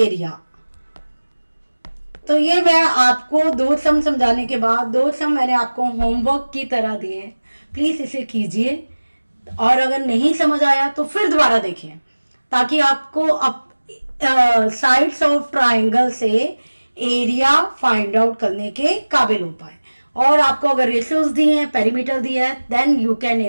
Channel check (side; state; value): both; inverted; correlation -1.00